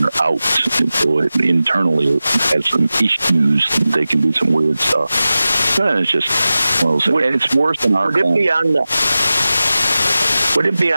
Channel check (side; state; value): both; inverted; correlation -0.95